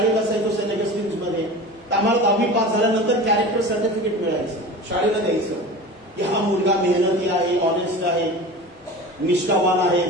असायचो सेनेट स्ट्रीम्समध्ये, आम्हाला 10वी पास झाल्यानंतर कॅरेक्टर सर्टिफिकेट मिळायचं, शाळेला द्यायचं की हा मुलगा मेहनती आहे, ऑनेस्ट आहे, निष्ठावान आहे,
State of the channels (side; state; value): both; normal; correlation 0.34